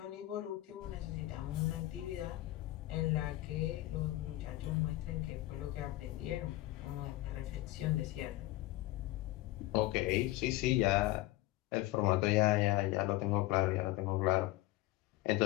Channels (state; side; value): quieter; right; 17.5 dB